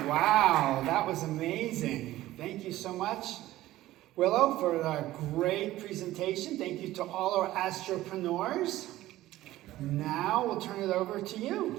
Wow. That was amazing. Thank you so much, Willow, for a great presentation. Thank you to all our astropreneurs. Now we'll turn it over to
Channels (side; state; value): left; quieter; 15.7 dB